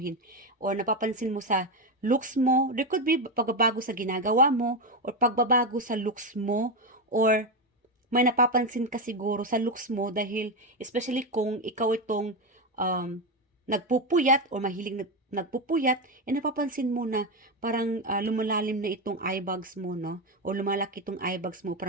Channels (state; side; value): normal; both; correlation 0.11